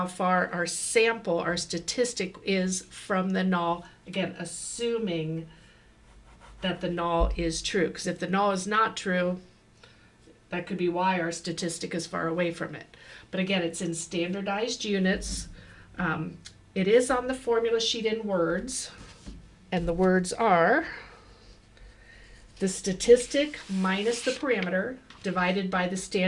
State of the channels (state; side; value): identical; both; correlation 1.00